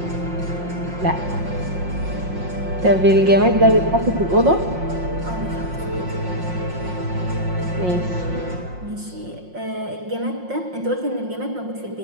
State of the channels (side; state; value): left; late; 5.6 ms